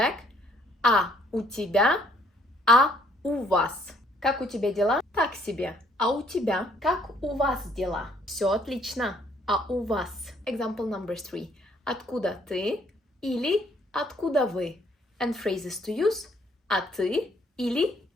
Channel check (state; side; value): normal; both; correlation 0.64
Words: А у тебя, а у вас? Как у тебя дела? Так себе. А у тебя? Как у вас дела? Все отлично. А у вас? Example number 3. Откуда ты? Или откуда вы? And phrases to use. А ты? Или